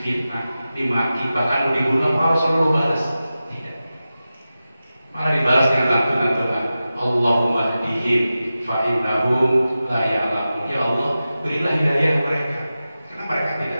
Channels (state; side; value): inverted; both; correlation -0.94